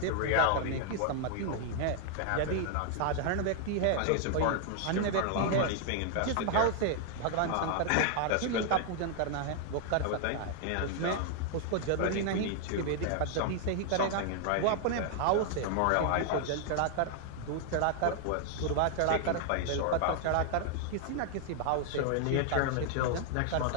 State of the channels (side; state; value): both; different; correlation 0.00